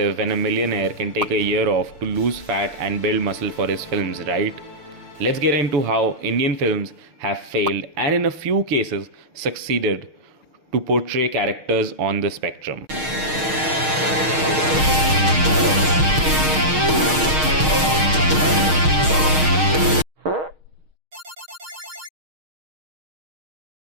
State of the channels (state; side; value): late; left; 6.5 ms